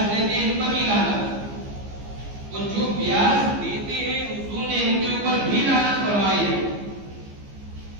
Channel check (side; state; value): left; late; 15 ms